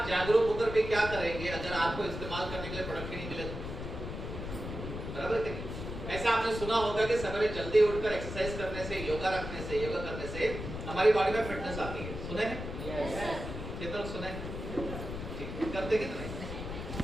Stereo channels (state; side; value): noise; left; rumble, 7 dB below the sound